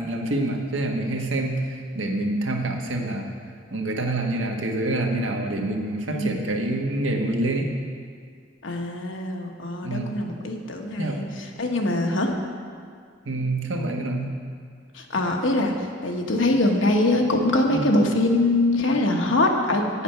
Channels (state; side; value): normal; both; correlation 0.44